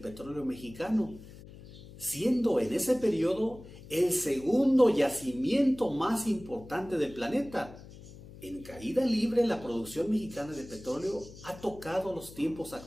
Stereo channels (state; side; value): noise; left; hum, 17 dB below the sound